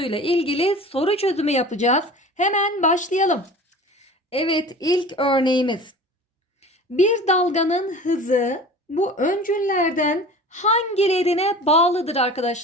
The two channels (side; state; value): both; normal; correlation 0.39